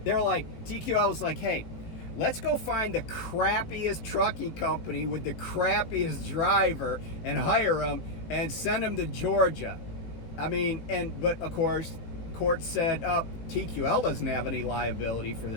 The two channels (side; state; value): right; late; 18 ms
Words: TQL was like, hey, let's go find the crappiest trucking company with the crappiest driver and hire them and send them to Georgia. But of course, court said, TQL doesn't have any liability for